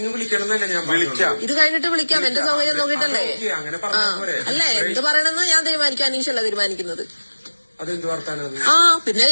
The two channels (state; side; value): inverted; both; correlation -1.00